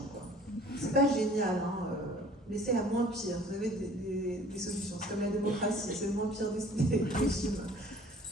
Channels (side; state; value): both; normal; correlation 0.52